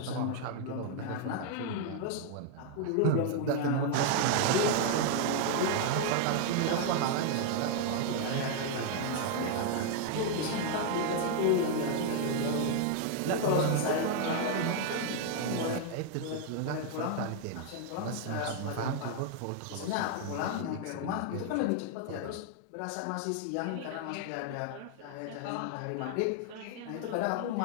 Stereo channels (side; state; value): both; different; correlation 0.00